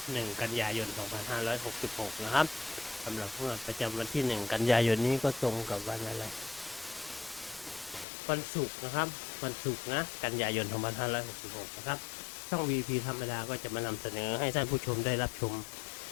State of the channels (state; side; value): drops out; right; at 8.1 s